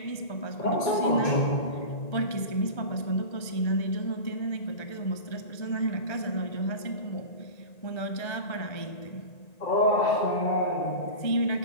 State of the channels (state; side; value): late; right; 1.9 ms